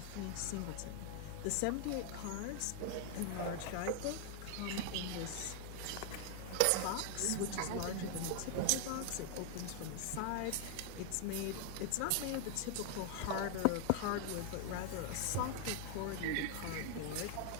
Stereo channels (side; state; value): both; different; correlation 0.00